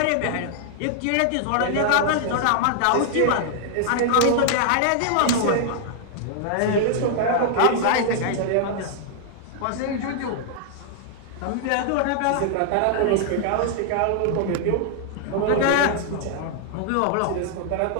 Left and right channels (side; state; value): both; different; correlation -0.01